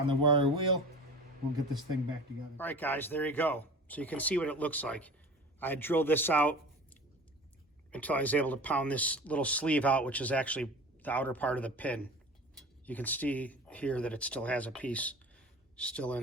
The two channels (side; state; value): both; normal; correlation 0.38